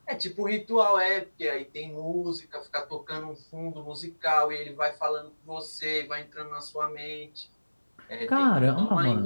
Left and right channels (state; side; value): inverted; both; correlation -1.00